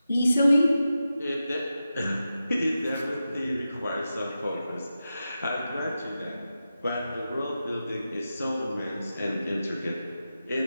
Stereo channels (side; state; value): both; inverted; correlation -0.91